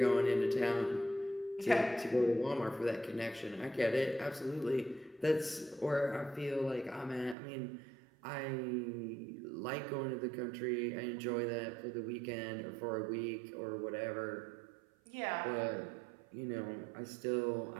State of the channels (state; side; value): drops out; left; at 7.4 s